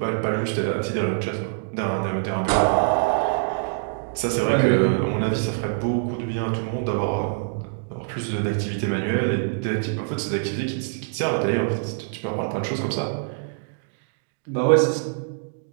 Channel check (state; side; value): silent; left; digital silence